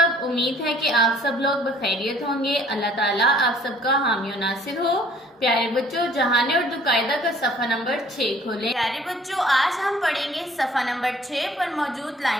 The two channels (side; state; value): both; normal; correlation 0.56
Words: सब, उम्मीद है कि आप सब लोग बखैरियत होंगे। अल्लाह ताला आप सबका हामी और नासिर हो। प्यारे बच्चों, जहाने उर्दू कायदा का सफ़ा नंबर 6 खोलें। प्यारे बच्चों, आज हम पढ़ेंगे सफ़ा नंबर 6 पर मौजूद